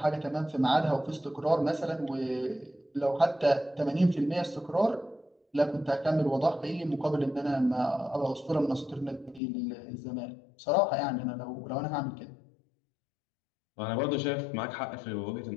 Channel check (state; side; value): drops out; right; at 9.4 s